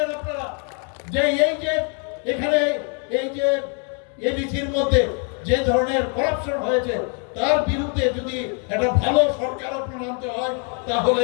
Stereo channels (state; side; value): quieter; right; 39.8 dB